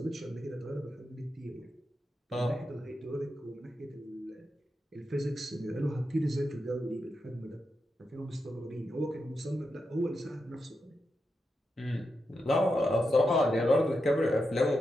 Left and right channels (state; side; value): normal; both; correlation 0.87